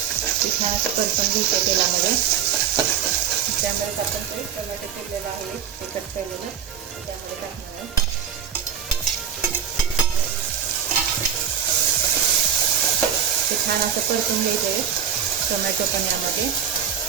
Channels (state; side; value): quieter; left; 8.3 dB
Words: ते छान असं परतून घ्यायचं तेलामध्ये. त्यामध्ये आपण ते टोमॅटो चिरलेलं आहे ते कट केलेलं त्यामध्ये टाकणार आहे. ते छान असं परतून घ्यायचं आहे टोमॅटो पण यामध्ये.